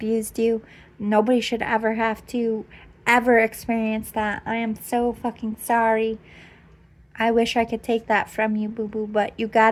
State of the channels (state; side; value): identical; both; correlation 1.00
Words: you. Nobody should ever have to ever experience that. I am so fucking sorry. I wish I could take that from you, boo-boo, but you